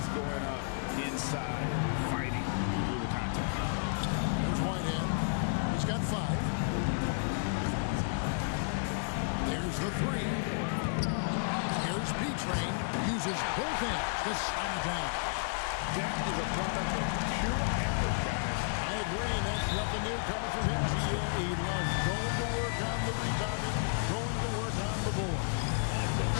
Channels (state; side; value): silent; right; 56 dB below the other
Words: going up inside and fighting through the contact. Here's Whitehead. He's got 5. There's the 3. Here's B-Train. Uses both hands to slam it down. That is a product of pure effort, guys. I agree, and that's nothing new coming from him. He loves going to work on the rebounding, going to work on the board.